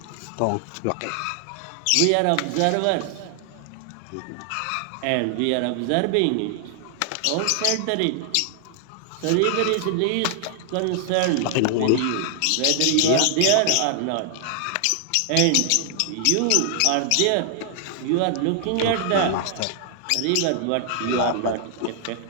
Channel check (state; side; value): different; both; correlation 0.00